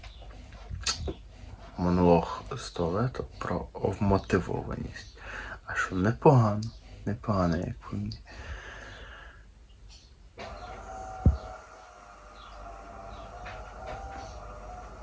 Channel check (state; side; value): identical; both; correlation 1.00